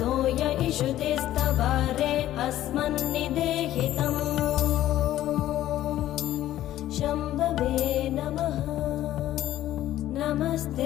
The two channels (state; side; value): quieter; right; 13.4 dB